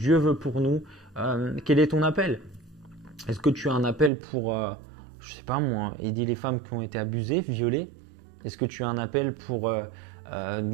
veut pour nous. Quel est ton appel? Est-ce que tu as un appel pour, je sais pas moi, aider les femmes qui ont été abusées, violées? Est-ce que tu as un appel pour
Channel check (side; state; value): left; drops out; at 4.1 s